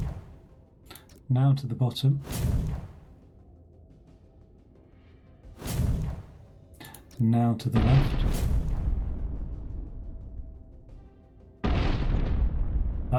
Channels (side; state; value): both; identical; correlation 1.00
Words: Now to the bottom. Now to the left.